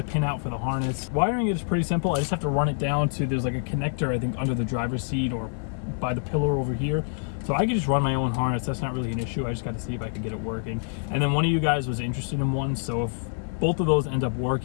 a pin out for the harness. Wiring it is pretty simple. I just have to run it down to, there's like a connector, I think, under the driver's seat or by the pillar over here. So I could just run my own harness. That's not really an issue. I just got to see if I could get it working. And then one of you guys was interested in one. So if both of those end up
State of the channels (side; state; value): right; silent; digital silence